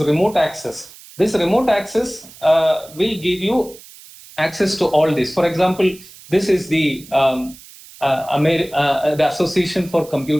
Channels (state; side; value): noise; right; hiss, 20 dB below the sound